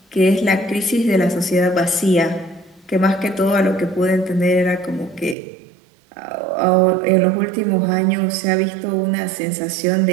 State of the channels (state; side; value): drops out; left; at 5.4 s